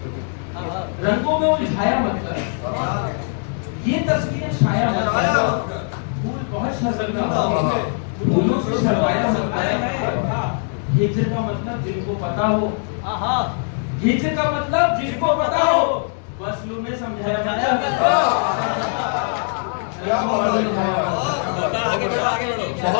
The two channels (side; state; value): right; silent; 61 dB below the other